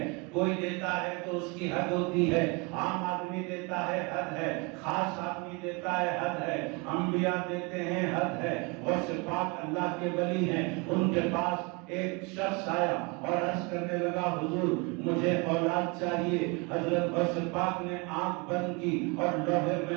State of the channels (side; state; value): left; quieter; 29.7 dB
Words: کوئی دیتا ہے تو اس کی حد ہوتی ہے، عام آدمی دیتا ہے حد ہے، خاص آدمی دیتا ہے حد ہے، انبیاء دیتے ہیں حد ہے۔ غوث پاک اللہ کے ولی ہیں، ان کے پاس ایک شخص آیا اور عرض کرنے لگا حضور مجھے اولاد چاہیے۔ حضرت غوث پاک نے آنکھ بند کی اور لوح